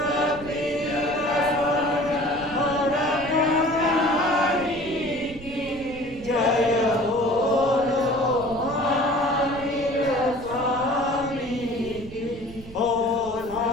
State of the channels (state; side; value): noise; right; rumble, 17 dB below the sound